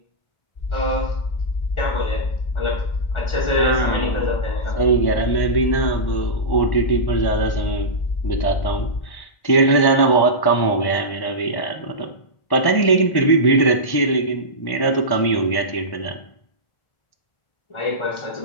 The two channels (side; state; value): right; late; 1.1 ms